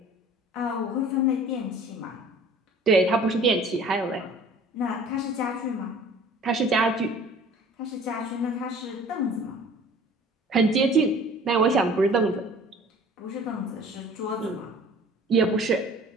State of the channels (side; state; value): both; normal; correlation 0.48